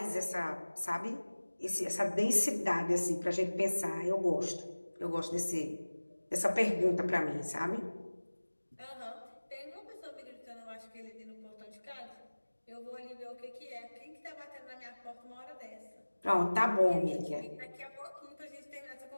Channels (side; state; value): both; inverted; correlation -1.00